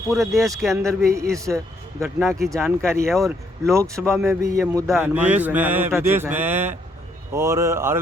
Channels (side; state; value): both; normal; correlation 0.71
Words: देश के अंदर भी इस घटना की जानकारी है और लोकसभा में भी ये मुद्दा विदेश में और